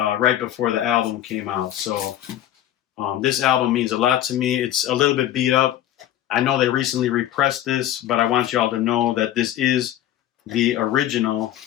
before the album came out. So this album means a lot to me. It's a little bit beat up. I know they recently repressed this, but I want y'all to know that this is the original.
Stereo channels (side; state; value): right; quieter; 12.3 dB